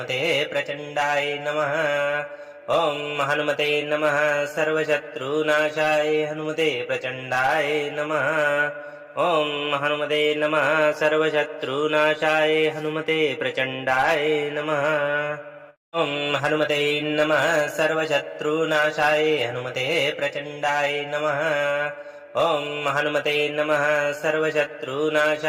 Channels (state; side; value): identical; both; correlation 1.00